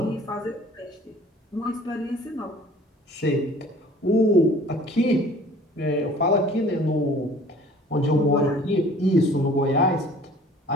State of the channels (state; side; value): normal; both; correlation 0.50